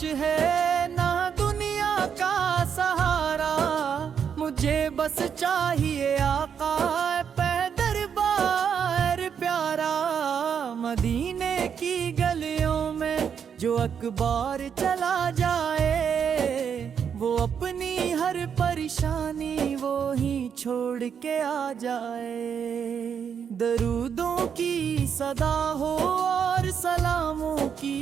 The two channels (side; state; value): left; quieter; 7.5 dB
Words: ہے نہ دنیا کا سہارا، مجھے بس چاہیے آقا پہ دربار پیارا۔ مدینے کی گلیوں میں جو اکبار چلا جائے، وہ اپنی ہر پریشانی وہی چھوڑ کے آ جائے۔ درودوں کی صدا ہو اور سلاموں